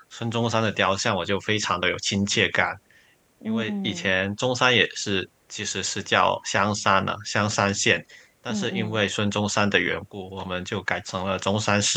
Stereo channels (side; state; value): both; identical; correlation 1.00